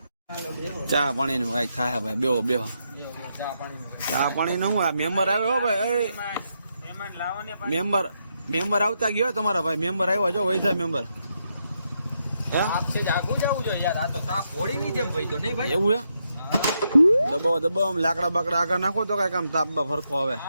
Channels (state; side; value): inverted; both; correlation -0.81